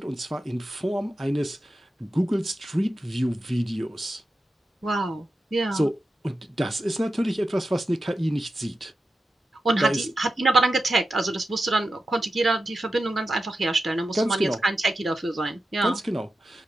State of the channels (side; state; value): both; normal; correlation 0.91